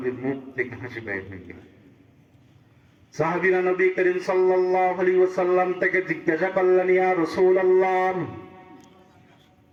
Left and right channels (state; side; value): identical; both; correlation 1.00